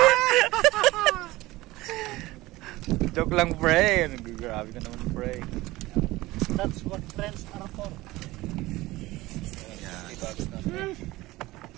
Joke lang pre. Grabe ka naman pre. That's what friends are for.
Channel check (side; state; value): left; quieter; 19.0 dB